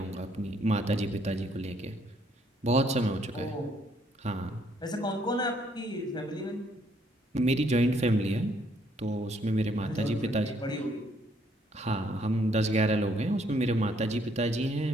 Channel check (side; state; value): both; normal; correlation 0.68